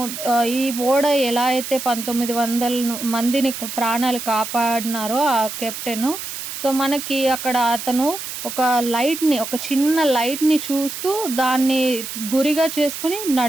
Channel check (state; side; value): noise; right; hiss, 8 dB below the sound